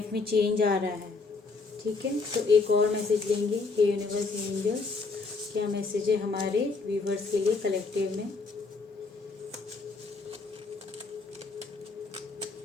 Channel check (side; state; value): right; quieter; 4.1 dB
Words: में चेंज आ रहा है। ठीक है, तो एक और मैसेज लेंगे। हे यूनिवर्स, हे एंजल्स, क्या मैसेज है हमारे व्यूवर्स के लिए कलेक्टिव में।